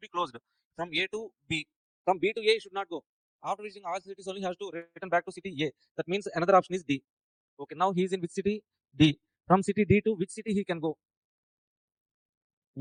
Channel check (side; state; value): both; identical; correlation 1.00